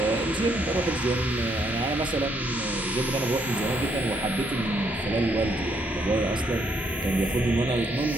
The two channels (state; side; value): normal; both; correlation 0.72